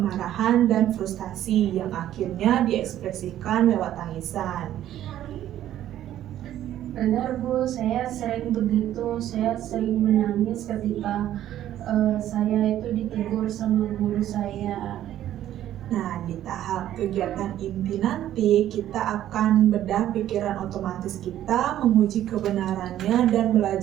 dan frustasi yang akhirnya diekspresikan lewat tangisan. Benar Bu, saya sering begitu, saya sering menangis ketika saya itu ditegur sama guru saya. Nah, di tahap kegiatan inti nanti, kita akan bedah pikiran otomatis kita, menguji kebenarannya, dan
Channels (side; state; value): left; quieter; 12.2 dB